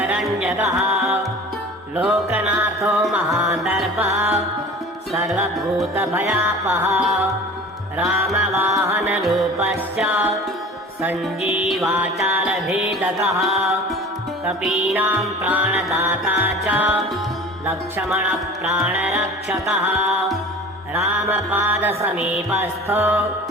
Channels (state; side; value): normal; both; correlation 0.40